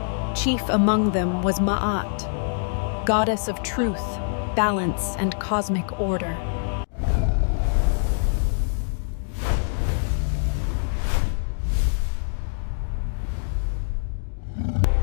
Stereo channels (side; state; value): right; silent; digital silence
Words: Chief among them was Ma'at, goddess of truth, balance, and cosmic order.